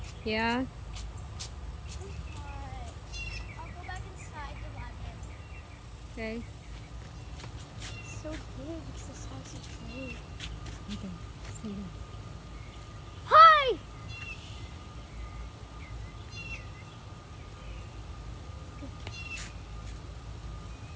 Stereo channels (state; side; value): identical; both; correlation 1.00